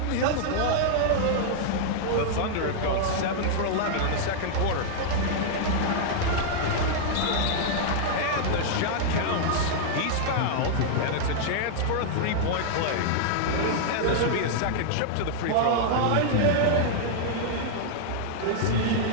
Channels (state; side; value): different; both; correlation -0.01